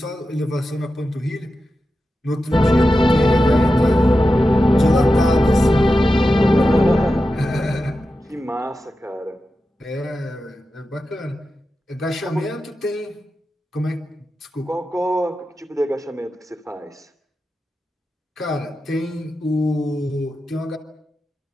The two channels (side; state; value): both; normal; correlation 0.91